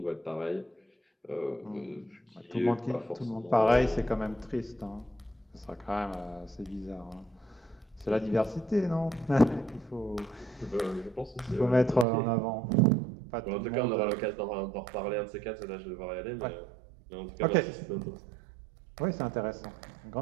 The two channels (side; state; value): left; drops out; at 12.1 s